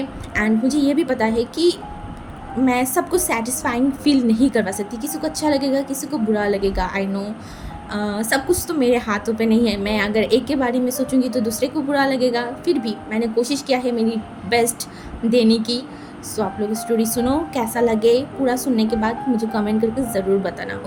एंड मुझे ये भी पता है कि मैं सबको सेटिस्फाइंग फील नहीं करवा सकती, किसी को अच्छा लगेगा किसी को बुरा लगेगा। आई नो सब कुछ तो मेरे हाथों पे नहीं है। मैं अगर एक के बारे में सोचूंगी तो दूसरे को बुरा लगेगा, फिर भी मैंने कोशिश किया है मेरी बेस्ट देने की। आप लोग स्टोरी सुनो, कैसा लगे पूरा सुनने के बाद मुझे कमेंट करके ज़रूर बताना।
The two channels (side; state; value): both; identical; correlation 1.00